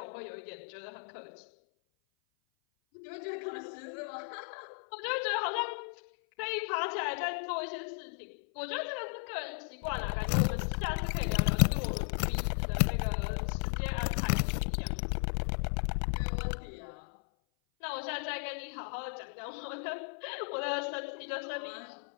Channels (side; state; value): right; silent; 54 dB below the other